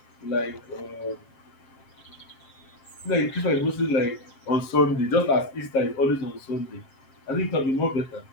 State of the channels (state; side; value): late; right; 7.5 ms